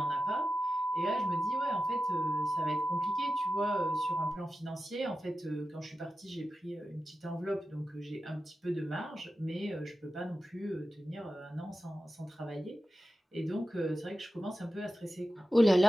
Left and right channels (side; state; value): both; normal; correlation 0.92